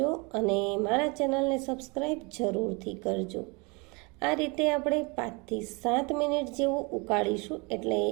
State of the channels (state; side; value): quieter; left; 29.2 dB